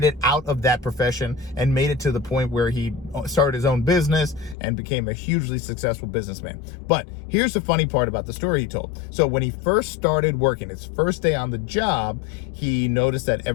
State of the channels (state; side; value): drops out; right; at 4.5 s